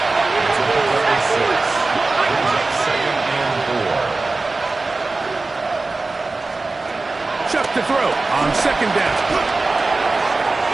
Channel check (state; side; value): quieter; left; 3.5 dB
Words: Shuck to throw on 2nd down.